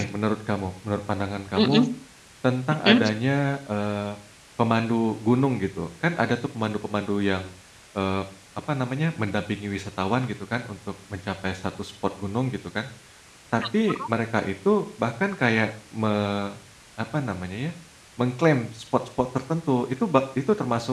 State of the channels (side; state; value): both; identical; correlation 1.00